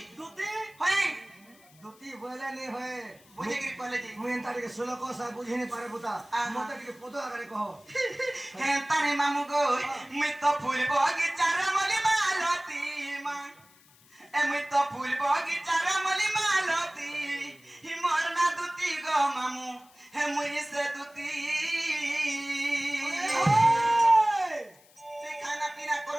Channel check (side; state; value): left; noise; hiss, 28 dB below the sound